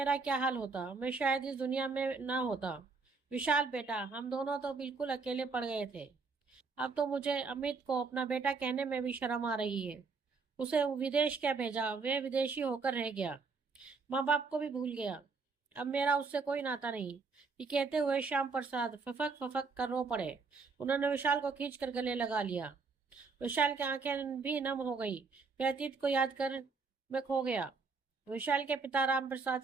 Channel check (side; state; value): left; quieter; 4.5 dB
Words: क्या हाल होता। मैं शायद इस दुनिया में ना होता। विशाल बेटा, हम दोनों तो बिल्कुल अकेले पड़ गए थे। अब तो मुझे अमित को अपना बेटा कहने में भी शर्म आ रही है। उसे विदेश क्या भेजा, वे विदेशी होकर रह गया, माँ बाप को भी भूल गया। अब मेरा उससे कोई नाता नहीं। ये कहते हुए श्याम प्रसाद फफक फफक कर रो पड़े। उन्होंने विशाल को खींच कर गले लगा लिया। विशाल की आंखें भी नम हो गई। वह अतीत को याद कर में खो गया। विशाल के पिता राम प्रसाद